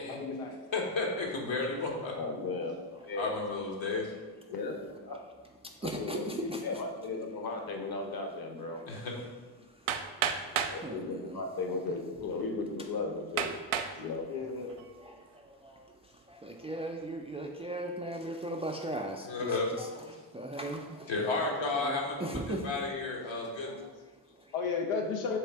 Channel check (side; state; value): both; normal; correlation 0.03